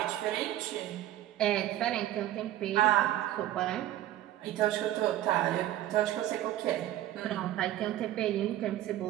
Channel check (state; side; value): quieter; left; 13.6 dB